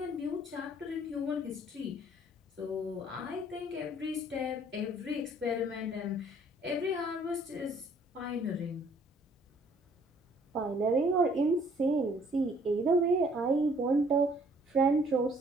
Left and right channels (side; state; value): both; normal; correlation 0.60